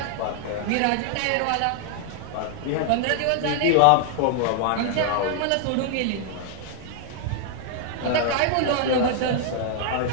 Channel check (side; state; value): both; different; correlation 0.00